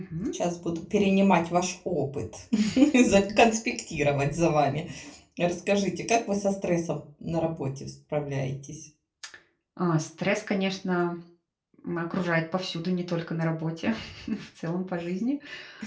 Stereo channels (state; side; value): identical; both; correlation 1.00